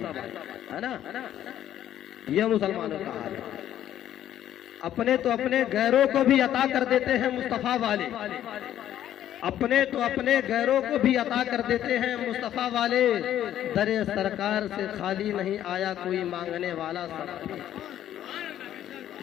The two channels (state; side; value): quieter; right; 11.5 dB